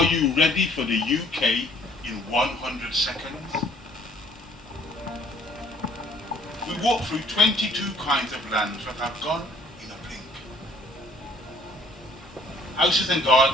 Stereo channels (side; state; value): both; normal; correlation 0.59